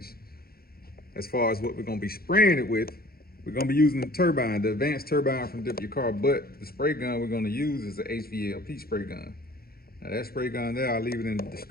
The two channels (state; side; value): late; right; 0.44 ms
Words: As far as what we're gonna be spraying it with, we're gonna be using the Turbine, the advanced Turbine from Dip Your Car, but the spray gun we're gonna use is the HVLP spray gun. Now that spray gun there, I'll leave it in the